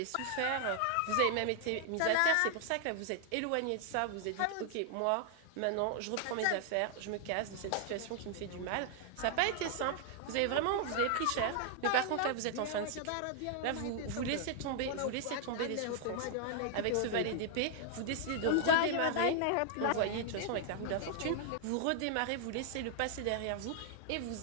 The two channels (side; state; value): both; different; correlation 0.00